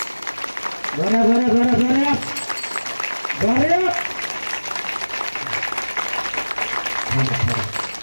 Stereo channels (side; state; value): both; inverted; correlation -1.00